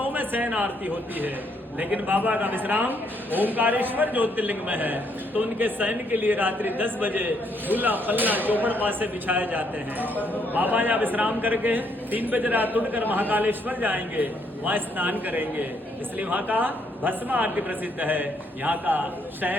में शयन आरती होती है, लेकिन बाबा का विश्राम ओंकारेश्वर ज्योतिर्लिंग में है, तो उनके शयन के लिए रात्रि 10 बजे झूला पल्ला चौपड़ पासे बिछाए जाते हैं। बाबा यहाँ विश्राम करके 3 बजे रात उठकर महाकालेश्वर जाएंगे, वहाँ स्नान करेंगे, इसलिए वहाँ का भस्म आरती प्रसिद्ध है, यहाँ का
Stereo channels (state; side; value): normal; both; correlation 0.71